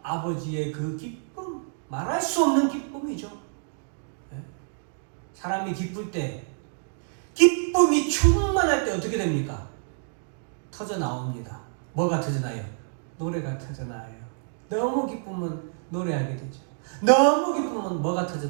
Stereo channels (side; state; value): left; silent; digital silence